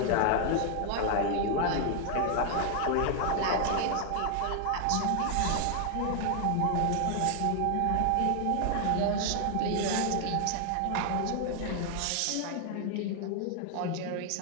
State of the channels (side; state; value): both; different; correlation 0.00